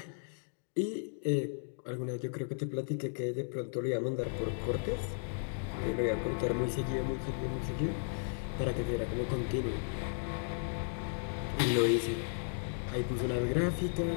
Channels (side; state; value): right; silent; digital silence